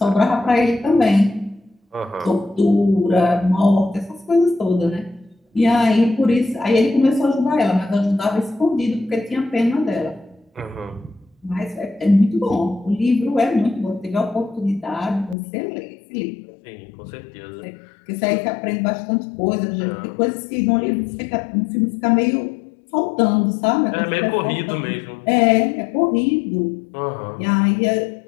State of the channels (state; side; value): drops out; right; at 15.4 s